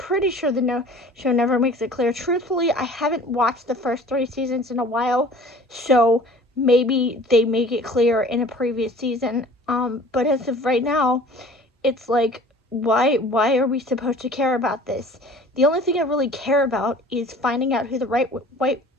sure the show never makes it clear. Truthfully, I haven't watched the first 3 seasons in a while, so maybe they make it clear in a previous season. But as of right now, it's like, why are we supposed to care about this? The only thing I really care about is finding out who the White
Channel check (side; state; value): both; normal; correlation 0.47